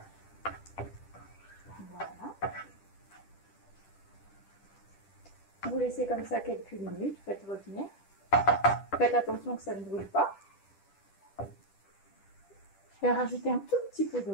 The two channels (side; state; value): right; late; 10 ms